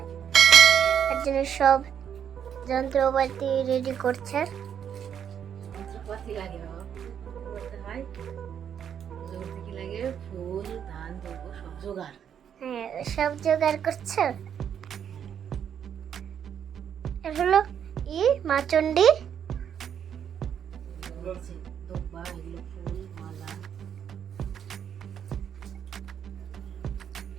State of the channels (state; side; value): quieter; left; 8.6 dB